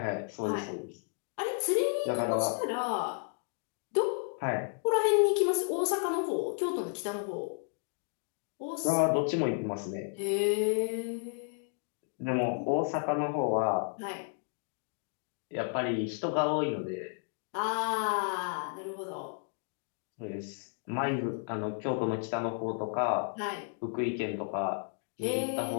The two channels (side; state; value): right; silent; 56 dB below the other